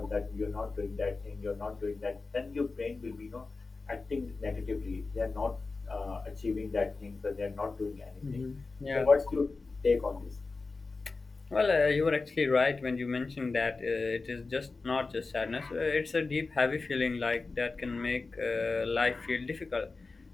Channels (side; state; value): right; quieter; 3.9 dB